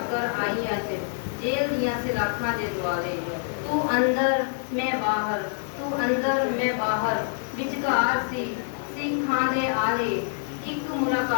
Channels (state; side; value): silent; right; 61 dB below the other